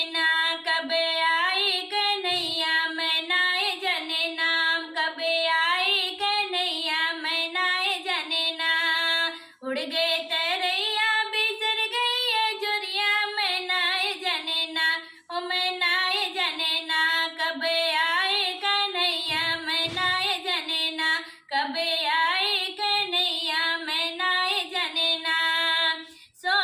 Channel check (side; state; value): both; identical; correlation 1.00